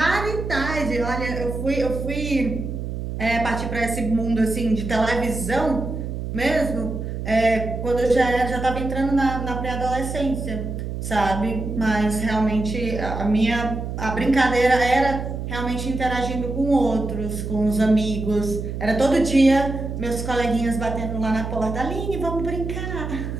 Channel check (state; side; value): noise; right; hum, 5 dB below the sound